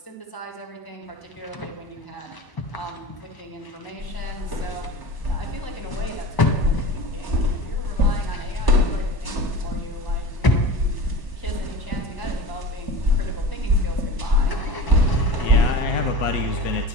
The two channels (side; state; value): right; late; 1.0 ms